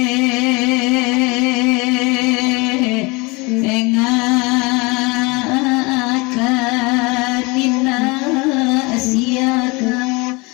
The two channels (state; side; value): quieter; right; 26.1 dB